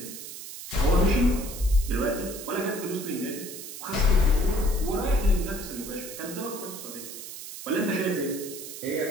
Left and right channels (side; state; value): right; noise; hiss, 11 dB below the sound